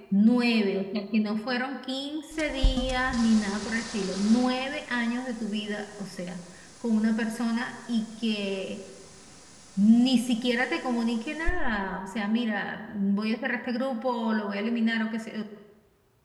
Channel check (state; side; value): identical; both; correlation 1.00